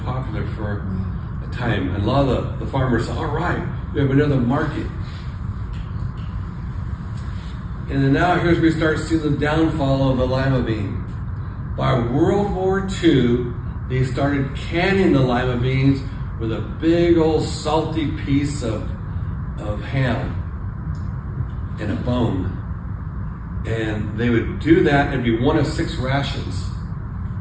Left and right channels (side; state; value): both; identical; correlation 1.00